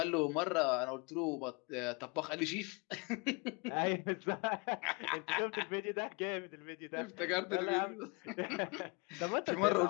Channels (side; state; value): right; quieter; 30.3 dB